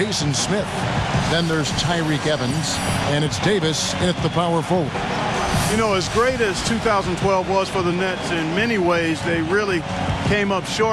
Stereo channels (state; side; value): identical; both; correlation 1.00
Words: Smith. Then there's Tyreke Evans, and it's Davis in at the power forward. You know, as great as 2012 was for the Nets, in many ways, they really came up